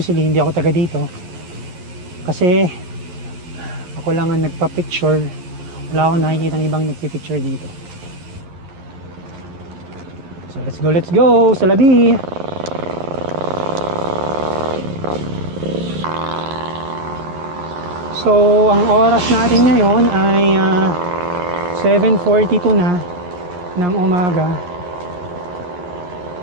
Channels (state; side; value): late; left; 11 ms